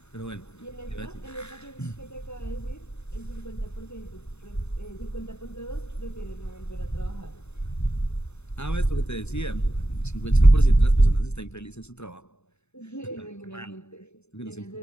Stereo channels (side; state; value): right; late; 0.81 ms